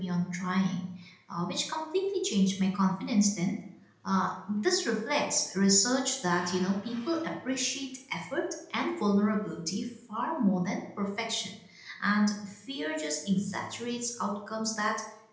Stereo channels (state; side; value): identical; both; correlation 1.00